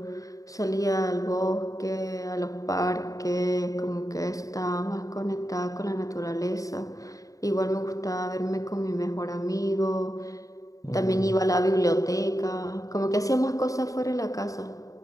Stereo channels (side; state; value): right; late; 0.16 ms